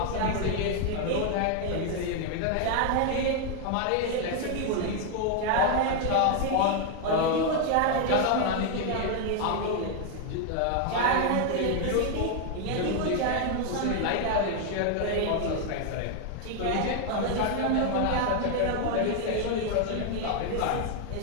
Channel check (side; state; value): both; different; correlation 0.00